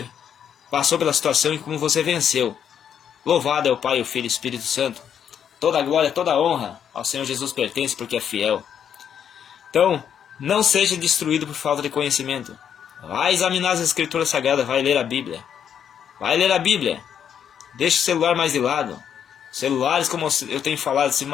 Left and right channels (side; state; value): right; quieter; 8.6 dB